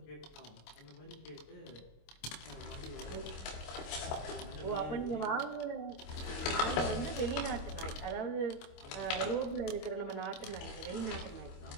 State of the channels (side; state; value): right; late; 26 ms